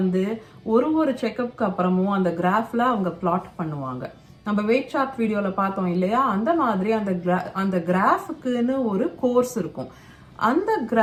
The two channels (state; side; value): identical; both; correlation 1.00